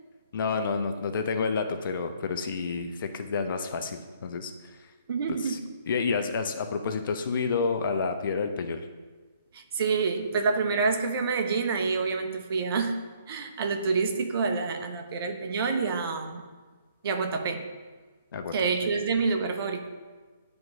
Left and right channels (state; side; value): inverted; both; correlation -0.62